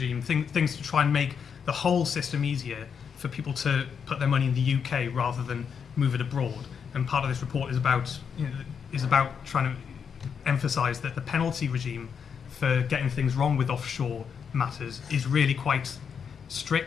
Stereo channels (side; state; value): right; quieter; 6.8 dB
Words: things to try and make the whole system easier for people to put their money in the UK rather than move it abroad. And part of this report is about trying to emphasise that the penalty regime for getting things wrong with offshore matters is really quite